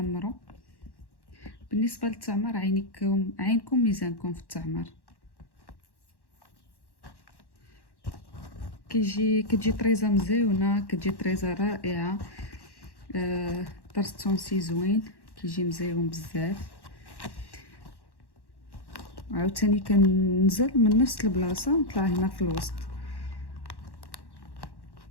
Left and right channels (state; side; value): late; right; 1.1 ms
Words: بالنسبه للتعمر عينكم ميزانكم في التعمر. كتجي طريزه مزيونه، كتجي طريزه رائعه. طرز تونسي زوين كيجي مزيون بزاف. عاوتاني كننزل من نفس البلاصه نطلع هنا في الوسط.